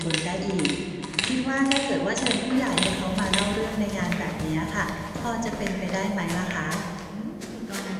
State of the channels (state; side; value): identical; both; correlation 1.00